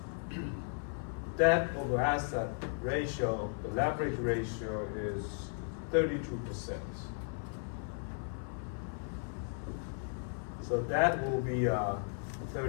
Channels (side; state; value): right; silent; 54 dB below the other